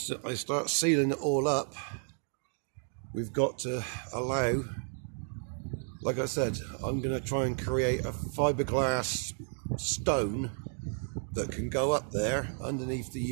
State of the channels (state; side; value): silent; left; 56 dB below the other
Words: start sealing it all up, we've got to allow, like I said, I'm going to try and create a fiberglass stone that can go up there underneath the